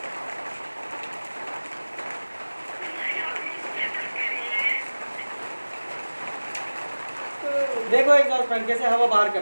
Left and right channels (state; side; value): inverted; both; correlation -1.00